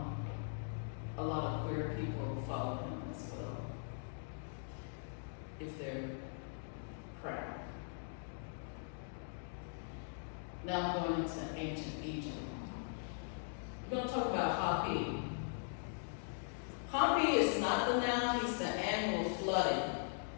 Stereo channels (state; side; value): silent; right; digital silence